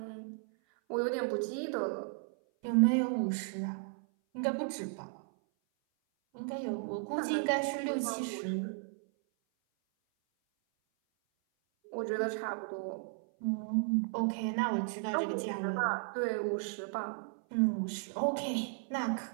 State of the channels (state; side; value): silent; left; 55 dB below the other